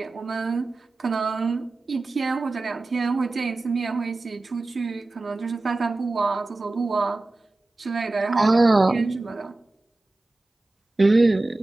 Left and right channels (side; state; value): left; quieter; 3.0 dB